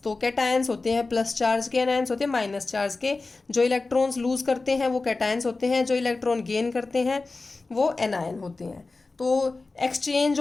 तो कैटायंस होते हैं प्लस चार्ज के, एनायंस होते हैं माइनस चार्ज के। जो इलेक्ट्रॉन्स लूज करते हैं वो कैटायंस होते हैं, जो इलेक्ट्रॉन गेन करते हैं वो एनायन होते हैं। तो exchange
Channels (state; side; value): quieter; right; 3.6 dB